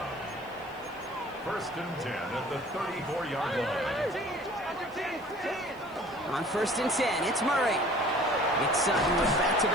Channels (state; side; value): noise; left; hiss, 28 dB below the sound